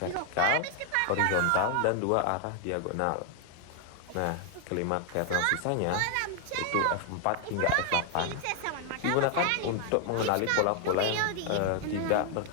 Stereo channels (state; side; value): different; both; correlation 0.00